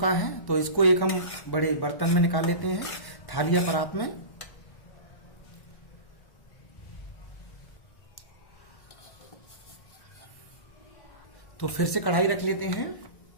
है, तो इसको एक हम बड़े बर्तन में निकाल लेते हैं, थाली या परात में। तो फिर से कढ़ाई रख लेते हैं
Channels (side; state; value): right; late; 1.1 ms